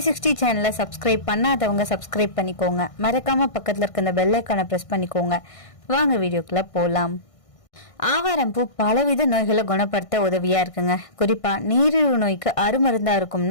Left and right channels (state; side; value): late; right; 1.6 ms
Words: சேனலை சப்ஸ்கிரைப் பண்ணாதவங்க சப்ஸ்கிரைப் பண்ணிக்கோங்க. மறக்காமல் பக்கத்தில் இருக்க இந்த பெல் ஐக்கானை ப்ரெஸ் பண்ணிக்கோங்க. வாங்க வீடியோக்குள்ளே போகலாம். ஆவாரம்பூ பலவித நோய்களை குணப்படுத்த உதவியா இருக்குங்க. குறிப்பா நீரிழிவு நோய்க்கு அருமருந்தா